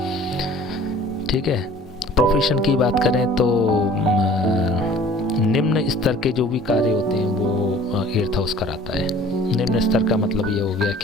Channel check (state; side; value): normal; both; correlation 0.49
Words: ठीक है। प्रोफेशन की बात करें तो निम्न स्तर के जो भी कार्य होते हैं वो 8th हाउस कराता है। निम्न स्तर का मतलब ये हो गया